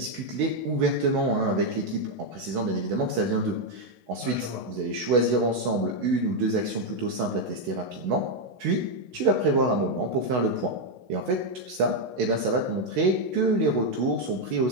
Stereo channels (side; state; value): left; late; 16 ms